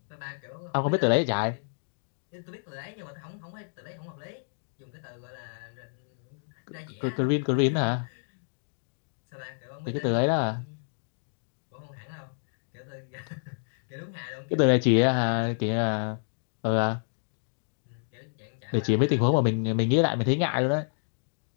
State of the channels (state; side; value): silent; right; digital silence